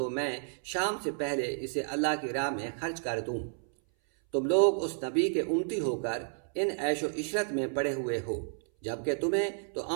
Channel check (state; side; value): silent; left; 57 dB below the other